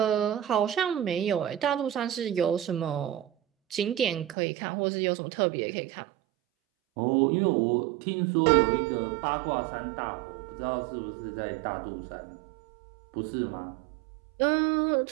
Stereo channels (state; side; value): drops out; left; at 4.4 s